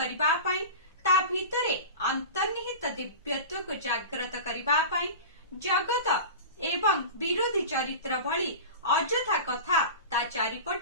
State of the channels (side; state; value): both; inverted; correlation -0.31